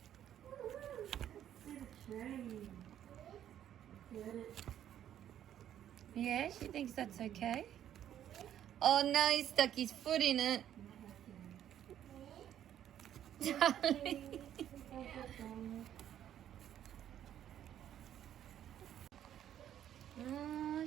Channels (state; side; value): quieter; left; 10.7 dB